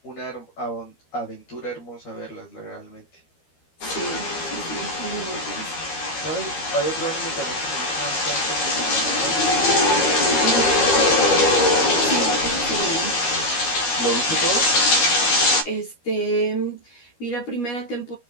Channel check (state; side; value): late; right; 13 ms